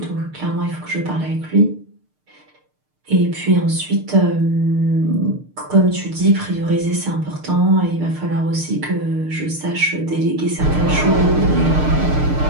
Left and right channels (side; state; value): left; late; 6.6 ms